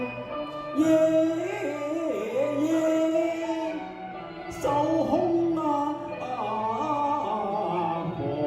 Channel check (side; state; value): both; identical; correlation 1.00